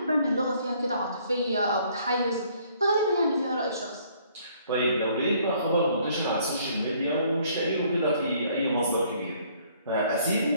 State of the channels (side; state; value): both; inverted; correlation -0.62